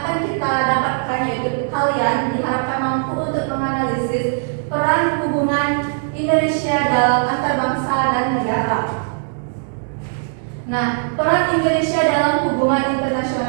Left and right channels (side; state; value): left; silent; 66 dB below the other